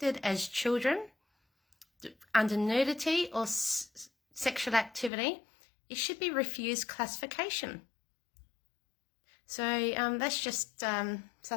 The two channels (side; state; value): right; drops out; at 5.1 s